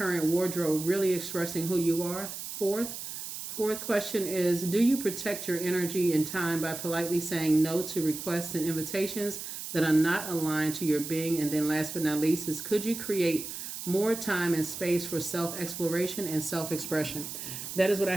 wardrobe really expressing who you are? Fourth question is, do you protect your energy and time by politely saying no to requests and invitations that are not aligned to your being? And then last but not least is, could you create more time and space for self-exploration and self-expression. That is what I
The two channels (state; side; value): noise; right; hiss, 8 dB below the sound